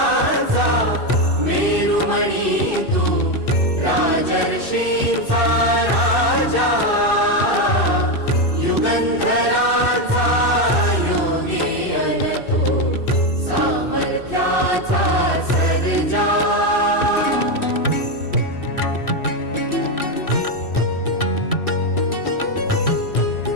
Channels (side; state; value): right; late; 2.6 ms